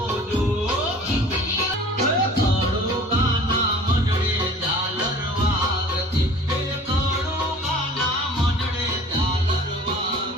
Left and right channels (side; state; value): both; normal; correlation 0.46